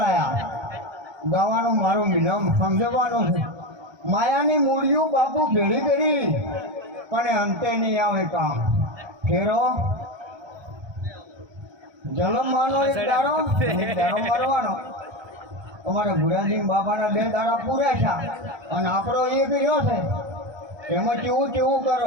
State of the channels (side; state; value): left; late; 1.2 ms